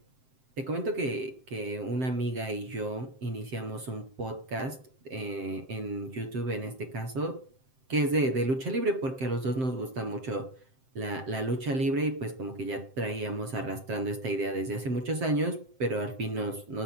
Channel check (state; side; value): late; left; 7.7 ms